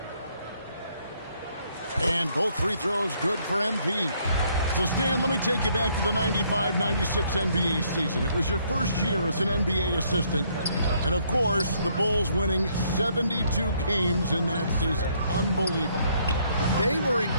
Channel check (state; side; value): inverted; both; correlation -0.68